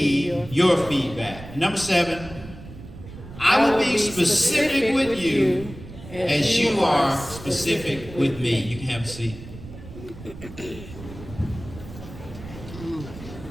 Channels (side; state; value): right; noise; rumble, 14 dB below the sound